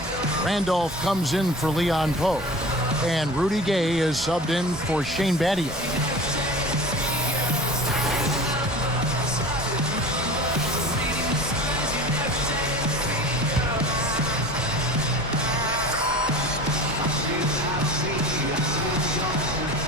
Randolph comes in for Leon Poe. And Rudy Gay is subbed in for Shane Battier.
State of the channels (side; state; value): both; normal; correlation 0.37